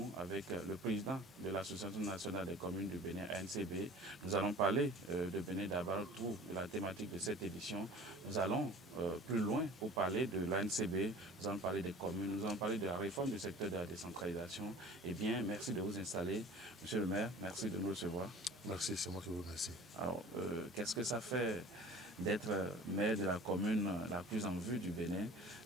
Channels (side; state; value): both; normal; correlation 0.44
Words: avec le président de l'Association nationale des communes du Bénin, ANCB. Nous allons parler de Bénin Dabaroutou, de la thématique de cette édition. Nous allons plus loin pour parler de l'ANCB, nous allons parler des communes, nous allons parler de la réforme du secteur de la décentralisation. Eh bien, merci de vous installer. Monsieur le maire, merci de nous recevoir. Merci, c'est moi qui vous remercie. Alors, qu'est-ce que ça fait d'être maire de la commune la plus en vue du Bénin,